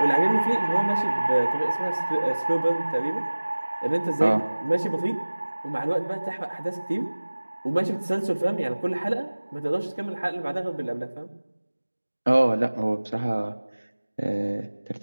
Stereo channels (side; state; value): both; inverted; correlation -1.00